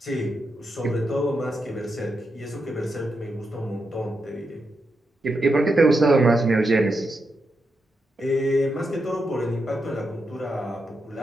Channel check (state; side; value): normal; both; correlation 0.85